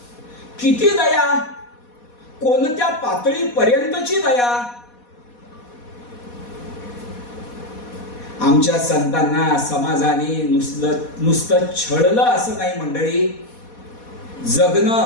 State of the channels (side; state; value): right; late; 4.2 ms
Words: किती दया, कोणत्या पातळीपर्यंतची दया. आमच्या संतांना समाजाने नुसतं छळलं असं नाही मंडळी,